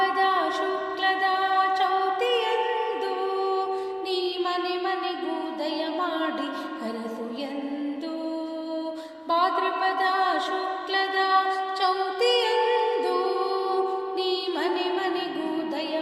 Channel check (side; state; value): both; identical; correlation 1.00